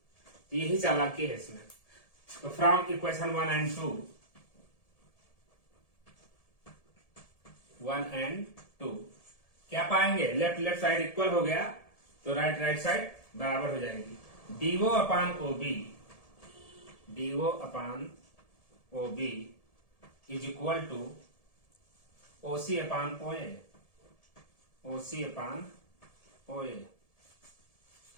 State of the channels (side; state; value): right; late; 1.7 ms